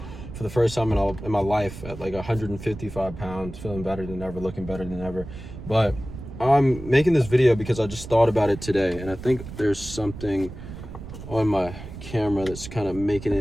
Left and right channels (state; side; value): noise; right; rumble, 12 dB below the sound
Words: for the first time in my life at like 155 pounds, feeling better than ever, looking better than ever. But I'm making this video because I just thought about it today, and I think there's something on my camera that's kind of making